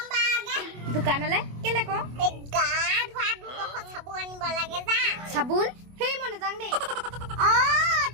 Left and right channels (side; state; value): left; late; 25 ms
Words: বাগে দোকানলে কেলে ক এই গা ধোৱা দুখ চাবুন আনিব লাগে যা চাবোন হেই মনে যাং দেই